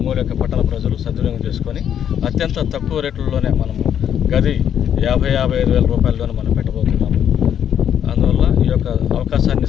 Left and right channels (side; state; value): right; quieter; 9.3 dB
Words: పట్టణ ప్రజలు సద్వినియోగం చేసుకొని అత్యంత తక్కువ రేట్లలోనే మనము గది 55,000 రూపాయలలోనే మనం పెట్టబోతున్నాము. అందువల్ల ఈ యొక్క అవకాశాన్ని